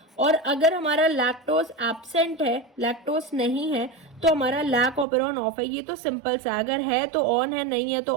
और अगर हमारा लैक्टोज एब्सेंट है, लैक्टोज नहीं है, तो हमारा लैक ऑपेरॉन ऑफ है। ये तो सिंपल सा, अगर है तो ऑन है, नहीं है तो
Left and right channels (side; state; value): left; drops out; at 5.1 s